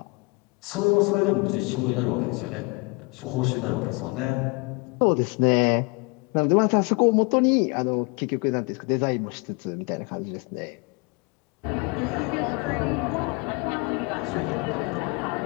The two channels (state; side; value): quieter; right; 30.3 dB